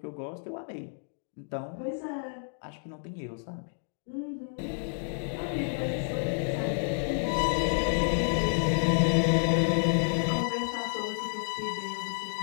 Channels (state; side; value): silent; right; digital silence